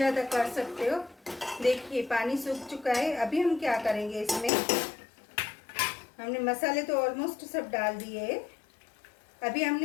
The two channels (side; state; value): right; drops out; at 4.5 s